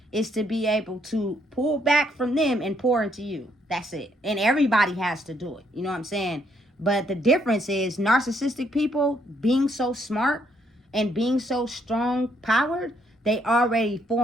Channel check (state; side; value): normal; both; correlation 0.71